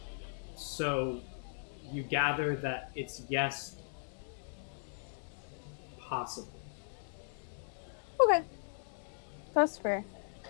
so you gather that it's yes, possible. okay, that's fair.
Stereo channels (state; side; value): silent; right; digital silence